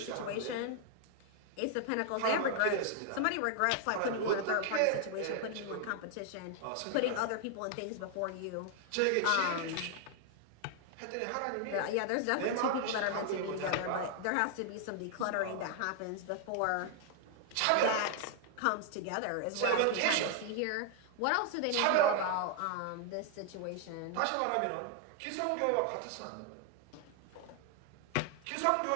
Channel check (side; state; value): both; different; correlation 0.00